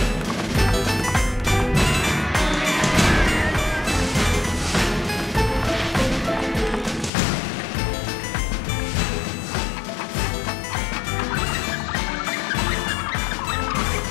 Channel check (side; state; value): right; drops out; at 7.1 s